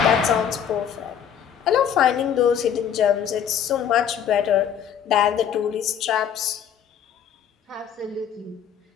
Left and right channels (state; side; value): quieter; right; 8.6 dB